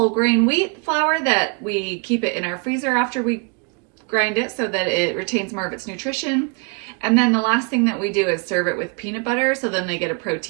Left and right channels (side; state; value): left; quieter; 33.0 dB